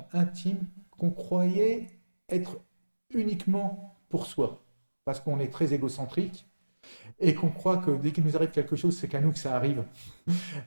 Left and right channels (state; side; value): inverted; both; correlation -1.00